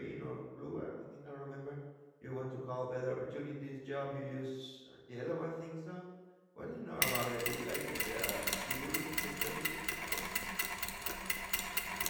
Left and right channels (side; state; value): both; identical; correlation 1.00